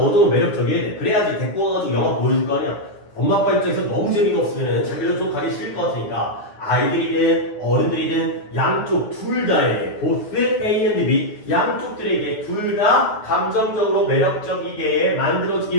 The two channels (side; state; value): right; late; 9.7 ms